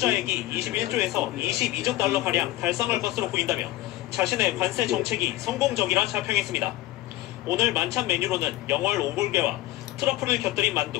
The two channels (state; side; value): quieter; right; 16.7 dB